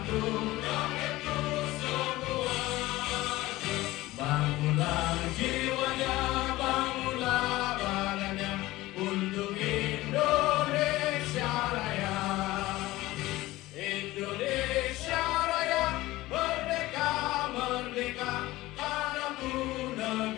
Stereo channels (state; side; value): quieter; right; 18.1 dB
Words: rakyatku semua. Bangunlah jiwanya, bangunlah badannya untuk Indonesia Raya. Indonesia Raya, merdeka, merdeka, tanahku,